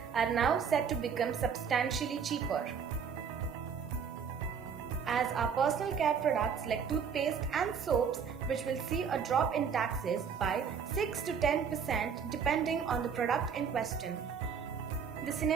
are now set to become substantially cheaper, as are personal care products like toothpaste and soaps, which will see a drop in taxes by 6 to 10% depending on the product in question. The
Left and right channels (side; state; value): left; quieter; 6.7 dB